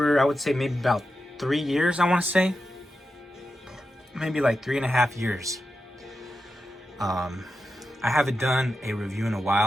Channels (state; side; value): normal; both; correlation 0.89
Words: I would say, maybe about 3 years, I want to say. Maybe like 3.5 years. I haven't done a review in a